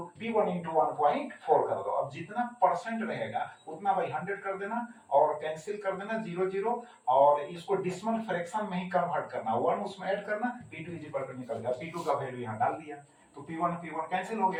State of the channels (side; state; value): both; identical; correlation 1.00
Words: P1 into 1.4 कर दो। अब जितना परसेंट रहेगा उतना बाई 100 कर देना और कैंसिल कर देना 0 0, और इसको डिसिमल फ्रैक्शन में ही कन्वर्ट करना, 1 उसमें ऐड करना, P2 इज इक्वल टू निकल गया, P2 का वैल्यू यहाँ डाल दिया, तो P1 कैंसिल हो